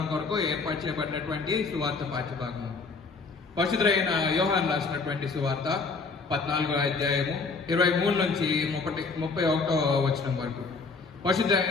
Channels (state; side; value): quieter; right; 4.3 dB